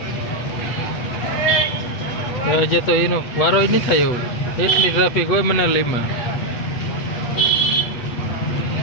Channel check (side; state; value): right; late; 8.3 ms